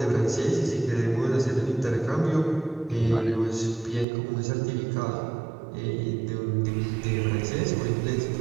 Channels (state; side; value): drops out; left; at 4.0 s